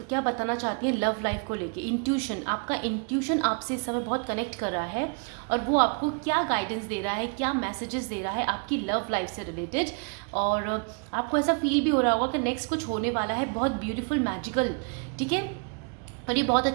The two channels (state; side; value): quieter; left; 39.2 dB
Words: क्या बताना चाहती है लव लाइफ को लेके। इंट्यूशन, आपका इंट्यूशन आपसे इस समय बहुत कनेक्ट कर रहा है और वो आपको क्या गाइडेंस दे रहा है, क्या मैसेजेस दे रहा है आपकी लव लाइफ से रिलेटेड। और आपको ऐसा फील भी हो रहा होगा कि नेक्स्ट कुछ होने वाला है बहुत ब्यूटीफुल मैजिकल, ठीक है। और ये बहुत